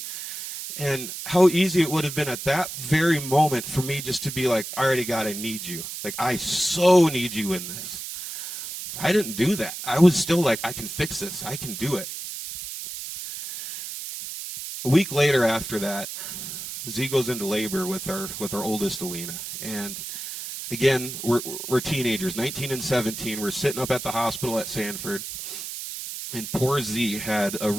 how easy it would have been at that very moment for me just to be like, all right, God, I need you. Like, I so need you in this. I didn't do that. I was still like, I can fix this. I can do it. A week later after that, Z goes into labor with our oldest, Alina. And again, we're teenagers, 19 and 17. We're sitting up at the hospital at Sanford. And poor Z had a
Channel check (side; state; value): right; noise; hiss, 8 dB below the sound